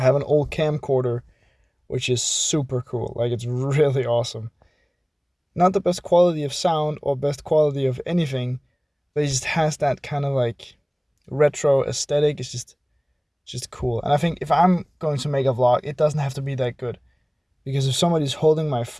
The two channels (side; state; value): both; identical; correlation 1.00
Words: an old camcorder, which is super cool. Like, it's really awesome. Not the best quality of sound or best quality of anything, but it just has that kind of like retro aesthetic. It's just cool. And I think if I'm going to make a vlog, it doesn't have to be that good. Because if somebody's holding my